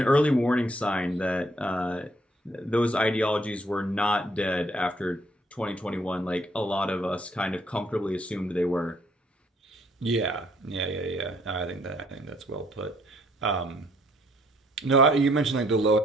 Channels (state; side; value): normal; both; correlation 0.66